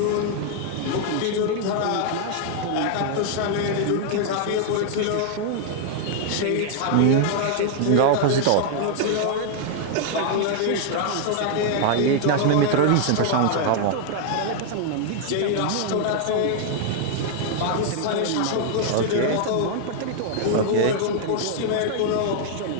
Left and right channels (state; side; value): different; both; correlation 0.00